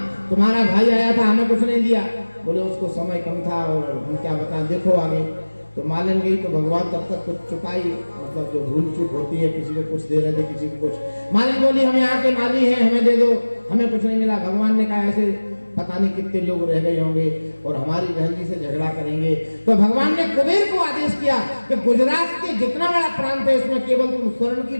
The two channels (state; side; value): inverted; both; correlation -1.00